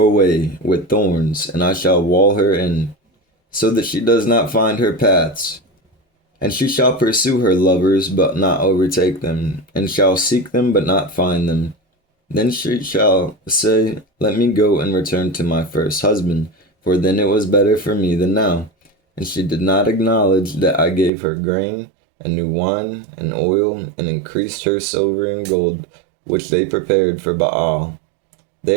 way with thorns, and I shall wall her in, so that she does not find her paths. And she shall pursue her lovers, but not overtake them, and shall seek them, but not find them. Then she shall say, Let me go and return to my first husband, for then it was better for me than now. And she did not acknowledge that I gave her grain, and new wine, and oil, and increased her silver and gold, which they prepared for Baal.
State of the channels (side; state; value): left; drops out; at 21.1 s